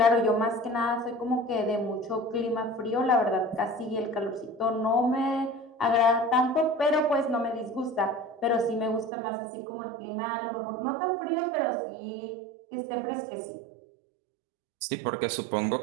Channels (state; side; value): drops out; left; at 9.1 s